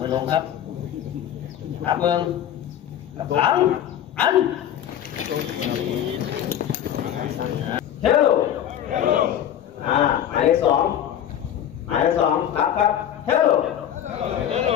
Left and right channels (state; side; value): quieter; right; 10.4 dB